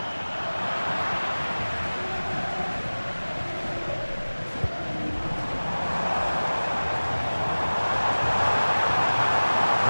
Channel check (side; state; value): both; inverted; correlation -1.00